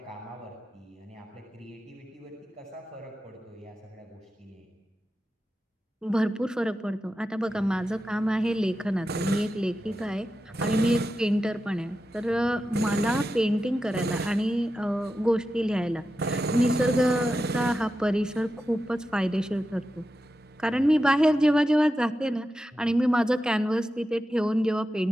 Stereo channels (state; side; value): normal; both; correlation 0.91